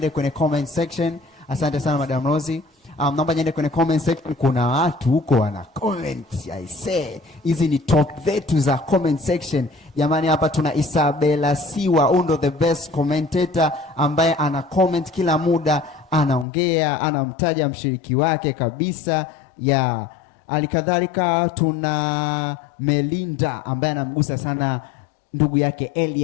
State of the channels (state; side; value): drops out; right; at 16.4 s